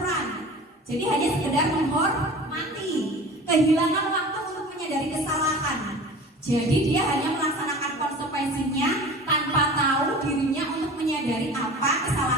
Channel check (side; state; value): both; normal; correlation 0.39